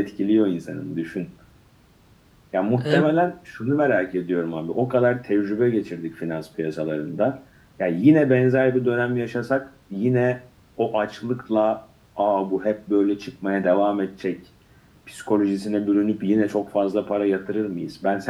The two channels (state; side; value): identical; both; correlation 1.00